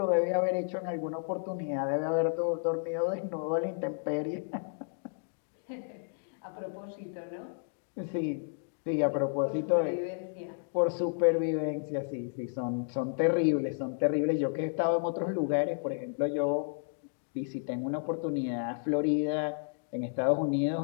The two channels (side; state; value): right; silent; digital silence